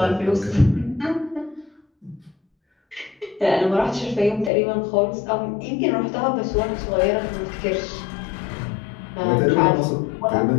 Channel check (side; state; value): right; drops out; at 4.5 s